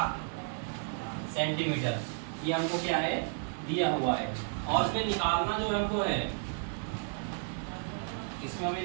सेंटीमीटर। ये हमको क्या है, दिया हुआ है। और इसमें निकालना जो हमको है, इसमें हमें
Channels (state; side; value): silent; left; 56 dB below the other